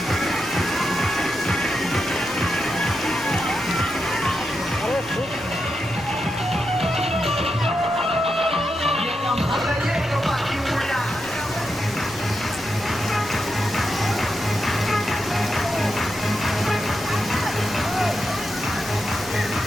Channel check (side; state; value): left; noise; rumble, 22 dB below the sound